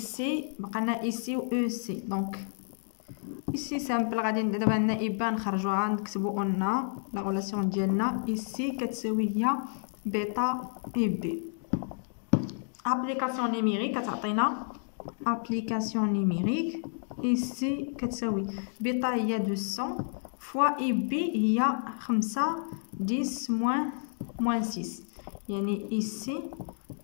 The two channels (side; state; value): right; silent; digital silence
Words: بقى لنا اي سي و او سي. دونك ici سامبل غادي دابا عندنا إبا نخرجوها نكتبو قلنا لا غولاسيون ديالنا ici كتساوي هي بيتا إي بي. ابليكاسيون نيميريك كتعطينا ابليكاسيون نيميريك ici كتساوي بيتا هي 200 فوا إي بي هي 5 10 موان 6 يعني ici